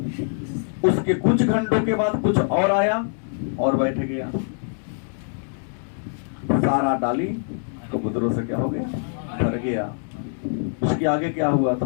उसके कुछ घंटों के बाद कुछ और आया और बैठ गया। सारा डाली कबूतरों से क्या हो गया? भर गया। उसके आगे क्या हुआ? तो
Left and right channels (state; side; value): silent; right; 63 dB below the other